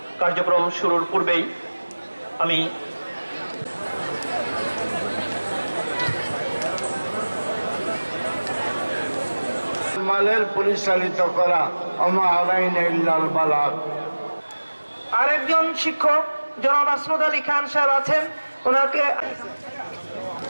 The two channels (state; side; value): inverted; both; correlation -1.00